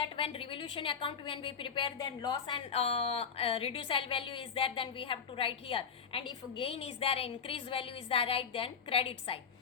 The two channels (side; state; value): right; quieter; 6.5 dB